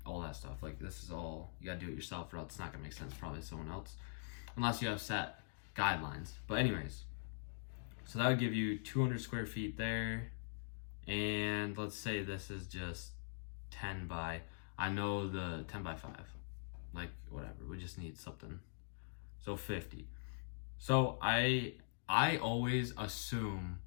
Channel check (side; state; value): right; silent; digital silence